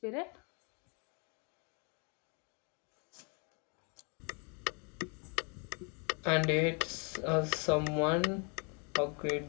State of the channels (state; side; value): quieter; right; 35.3 dB